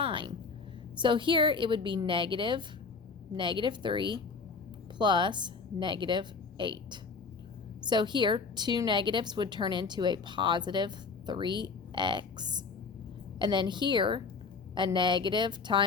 So here it would be negative 3 plus negative 8. So here, two negatives would turn into a positive 3x. And then here, a negative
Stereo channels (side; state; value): right; quieter; 4.7 dB